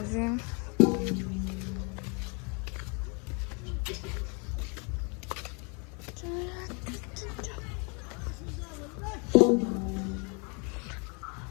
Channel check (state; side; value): quieter; right; 34.8 dB